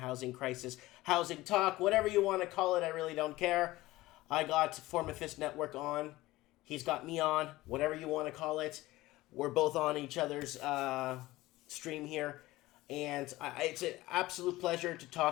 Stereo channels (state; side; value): quieter; right; 18.1 dB